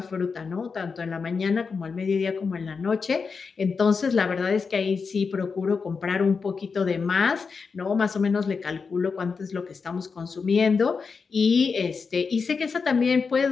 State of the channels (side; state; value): right; quieter; 5.2 dB